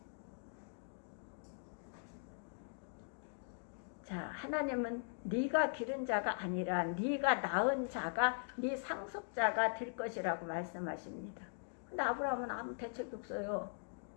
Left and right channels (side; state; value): right; silent; digital silence